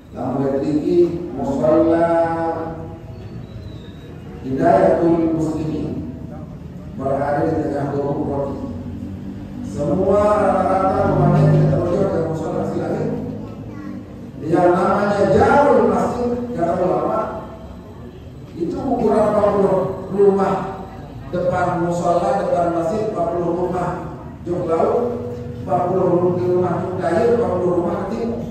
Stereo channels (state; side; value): identical; both; correlation 1.00